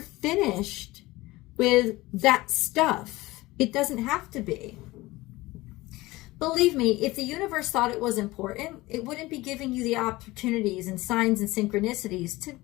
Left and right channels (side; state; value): right; quieter; 19.7 dB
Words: finished with that stuff. It doesn't have to be. Believe me, if the universe thought it was important, it wouldn't be giving you the opportunities and signs and synchronicities to